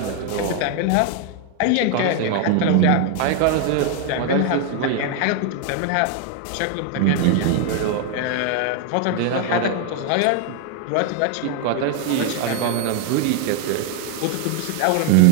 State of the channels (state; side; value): different; both; correlation 0.00